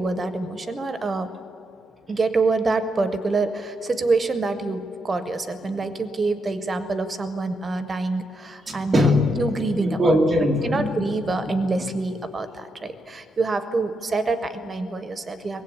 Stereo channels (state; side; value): normal; both; correlation 0.82